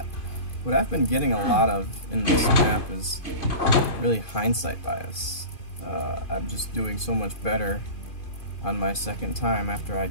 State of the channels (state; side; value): late; right; 2.4 ms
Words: what I've been getting a lot of in this map is really hindsight bias. I'm just doing so much better on my second time after I